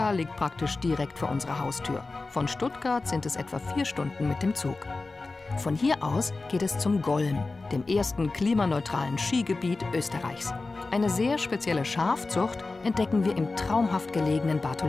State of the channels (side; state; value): right; quieter; 3.6 dB